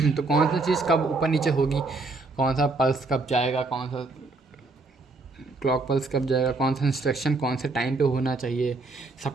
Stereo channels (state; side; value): quieter; left; 3.5 dB